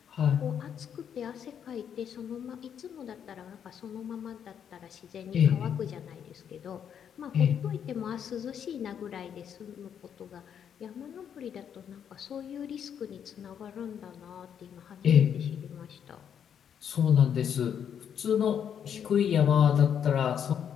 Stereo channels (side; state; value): right; quieter; 8.4 dB